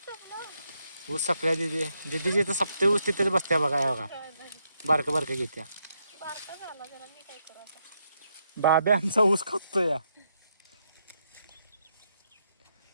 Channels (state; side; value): inverted; both; correlation -0.79